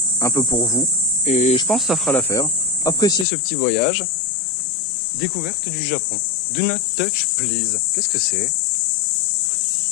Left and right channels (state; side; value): drops out; right; at 3.2 s